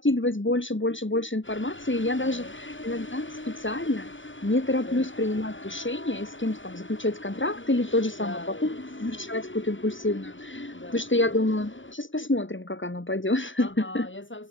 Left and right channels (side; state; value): right; late; 0.56 ms